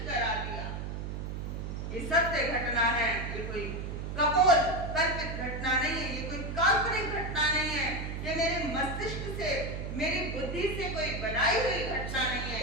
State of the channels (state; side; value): noise; right; hum, 5 dB below the sound